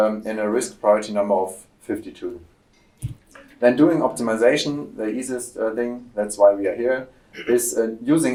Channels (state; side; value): identical; both; correlation 1.00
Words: a risk priority number of 52. Then doing optimization, the easiest thing, that's why we are here, is